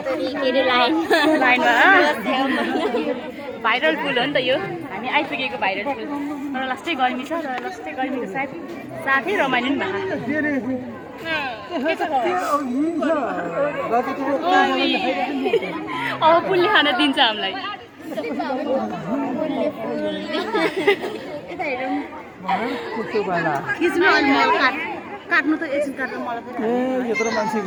लाइनमा भाइरल फुल हो नि त यो हामी आइपुगेको भाइरल फुल तर लास्टै गर्मी छ र लास्टै गर्मीको साथै रमाइलो नि भएको अब फुलले खान दिन्छ हामीलाई काट्नु त एकछिन काट्नु मलाई यत्रो मान्छे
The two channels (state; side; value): identical; both; correlation 1.00